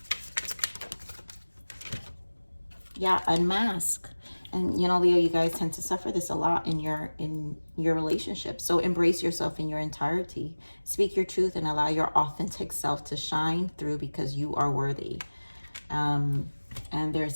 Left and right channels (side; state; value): both; inverted; correlation -1.00